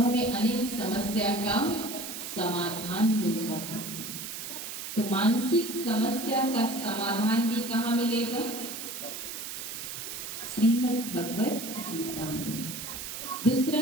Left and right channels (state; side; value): noise; right; hiss, 7 dB below the sound